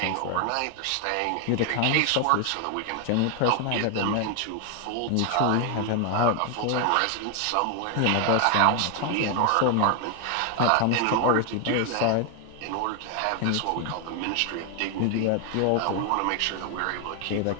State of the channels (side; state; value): both; different; correlation 0.00